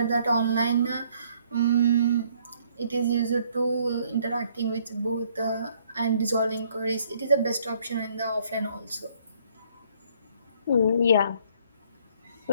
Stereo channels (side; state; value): both; inverted; correlation -0.64